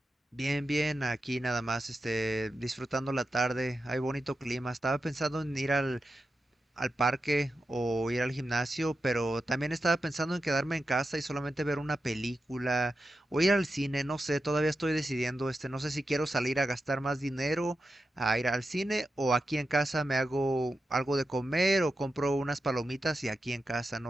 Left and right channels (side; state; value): both; normal; correlation 0.90